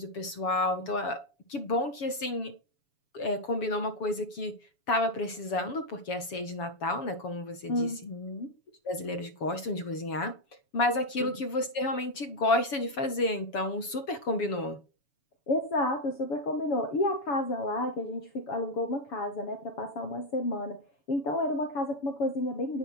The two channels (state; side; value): late; right; 7.1 ms